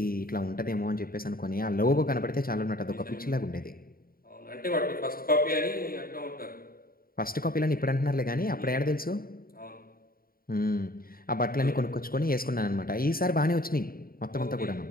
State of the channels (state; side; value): late; right; 0.43 ms